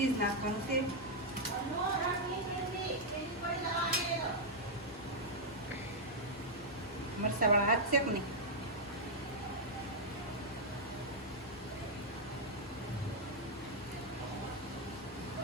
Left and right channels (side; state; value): both; normal; correlation -0.04